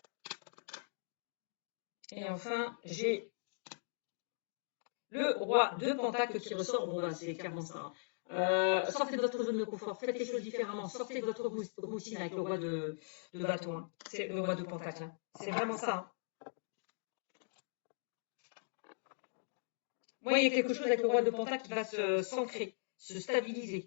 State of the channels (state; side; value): silent; right; digital silence